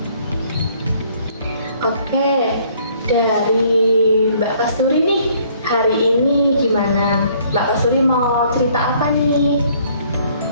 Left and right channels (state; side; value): inverted; both; correlation -0.62